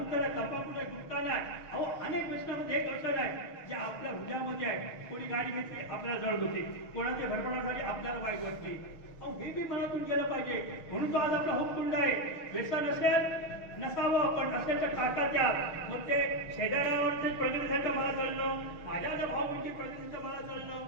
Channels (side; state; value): right; late; 6.3 ms